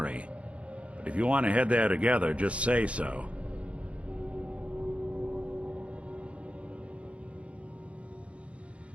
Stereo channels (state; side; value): late; left; 0.062 ms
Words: But if you want to head there together, just say so.